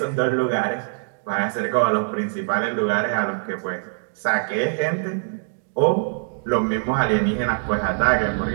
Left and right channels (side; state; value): left; silent; 63 dB below the other